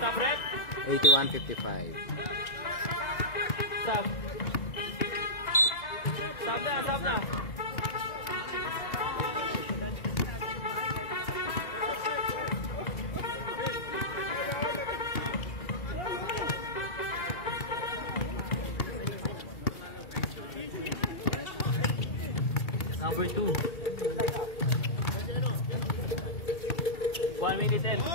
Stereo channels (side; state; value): right; late; 2.3 ms